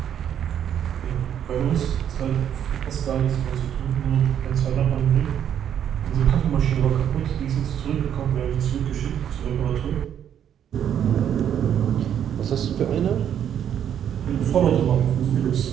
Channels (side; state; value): left; quieter; 9.4 dB